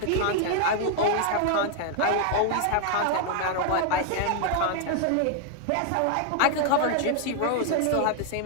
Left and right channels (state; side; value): different; both; correlation 0.00